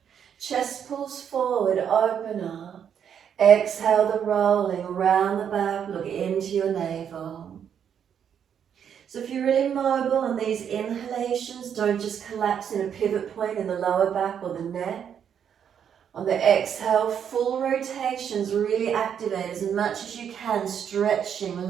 Chest pulls forward, open up. Exhale, the rolling around the back, look into your navel. So if you're really mobile on these inhalations, don't just collapse in a pivot point in the lower back or the neck. On the exhale, full rotations, really activate as much as you can,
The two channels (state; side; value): quieter; left; 8.3 dB